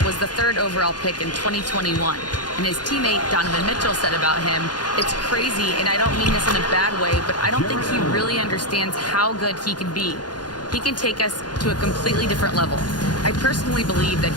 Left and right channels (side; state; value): right; late; 0.70 ms